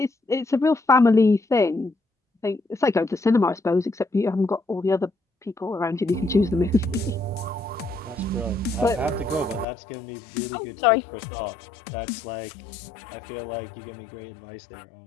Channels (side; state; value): right; drops out; at 9.7 s